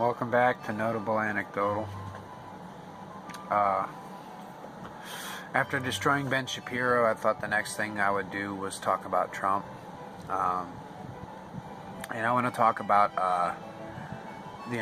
back to Notable Anecdotal. After destroying Ben Shapiro, I thought the next thing I would do was talk about Trump. And I want to talk about the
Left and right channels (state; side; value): identical; both; correlation 1.00